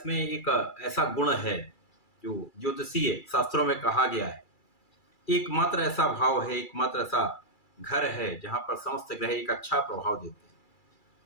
एक ऐसा गुण है जो ज्योतिषीय शास्त्रों में कहा गया है, एकमात्र ऐसा भाव है, एकमात्र ऐसा घर है जहां पर समस्त ग्रह एक अच्छा प्रभाव देते हैं।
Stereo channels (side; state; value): right; late; 2.3 ms